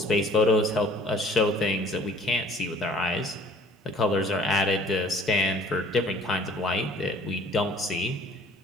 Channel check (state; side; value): normal; both; correlation 0.54